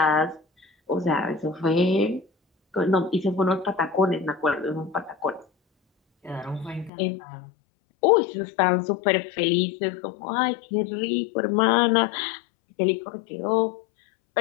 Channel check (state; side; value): drops out; right; at 6.9 s